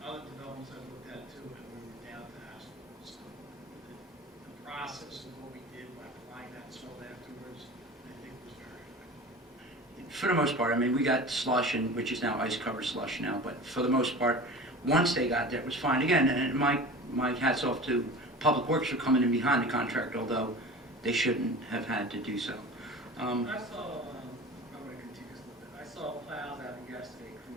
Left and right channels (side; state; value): both; normal; correlation 0.36